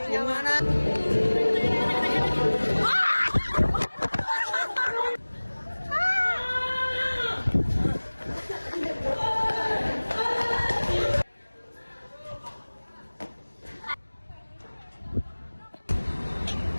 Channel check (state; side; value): inverted; both; correlation -1.00